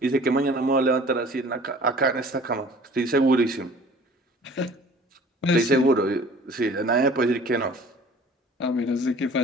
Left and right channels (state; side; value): normal; both; correlation 0.48